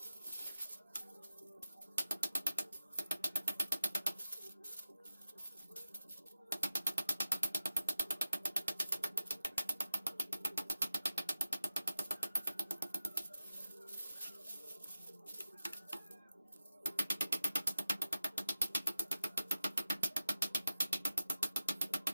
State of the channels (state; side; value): inverted; both; correlation -0.89